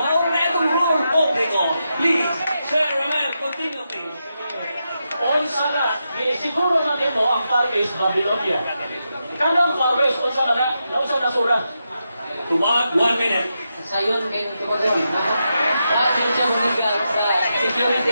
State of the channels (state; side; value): inverted; both; correlation -0.86